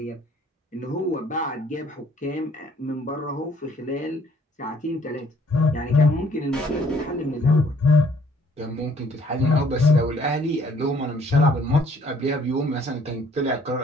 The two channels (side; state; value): both; normal; correlation 0.61